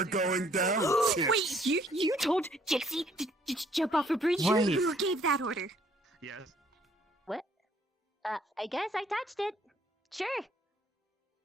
are. going down. Wait, you told Gypsy to jump off a bridge? Wait. Who gave that order? Yes. What? I guess I touched it. Sure.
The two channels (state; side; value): normal; both; correlation 0.63